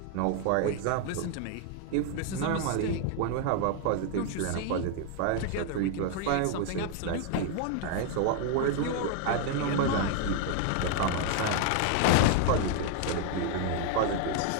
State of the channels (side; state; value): both; different; correlation 0.01